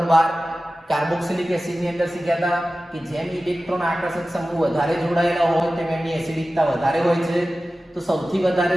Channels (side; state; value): both; normal; correlation 0.95